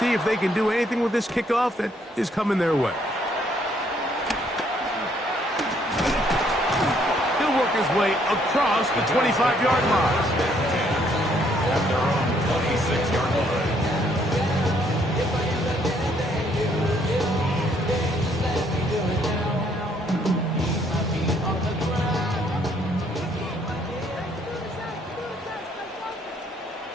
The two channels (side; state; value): both; normal; correlation 0.68